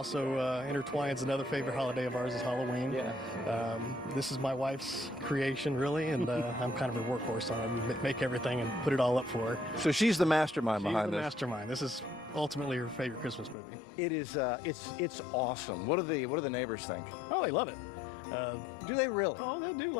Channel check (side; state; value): right; drops out; at 13.6 s